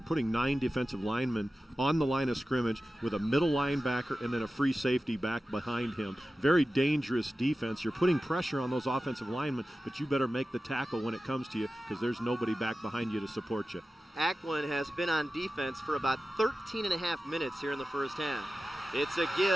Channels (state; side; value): normal; both; correlation 0.94